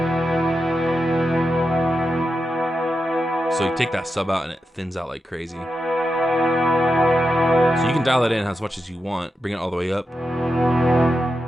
So you take that sub out and it thins out like crazy. So you can dial it in as much as you want, bring it all the way up.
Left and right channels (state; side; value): normal; both; correlation 0.88